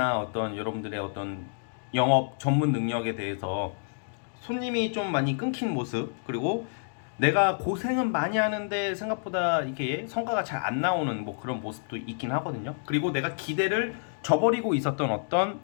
어떤 여러분들의 어떤 영업 전문 능력에 대해서 손님이 좀 많이 끊긴 모습, 그리고 내가 고생은 많이 하는데 생각보다 이게 성과가 잘 안 나오는 뭐 그런 모습도 있긴 하거든요. 그리고 내가 기대를 저버리고 있었던 어떤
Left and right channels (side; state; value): right; silent; digital silence